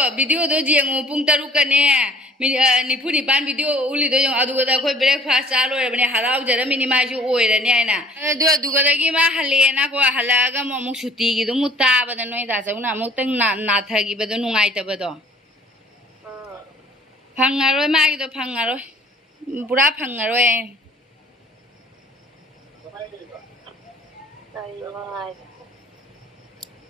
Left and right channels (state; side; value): normal; both; correlation 0.53